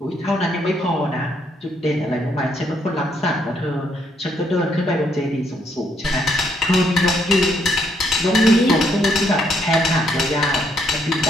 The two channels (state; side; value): normal; both; correlation 0.72